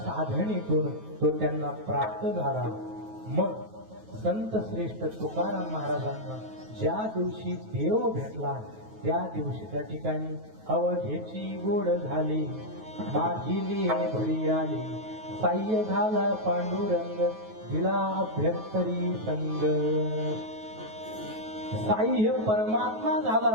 तो त्यांना प्राप्त झाला. मग संत श्रेष्ठ तुकाराम महाराजांना ज्या दिवशी देव भेटला त्या दिवशी त्या ठिकाणी अवघेची गोड झाली माझी लिहे भरी आली साह्य झाला पांडुरंग दिला अभ्यंतरी संग. साह्य परमात्मा झाला,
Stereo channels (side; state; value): left; late; 9.3 ms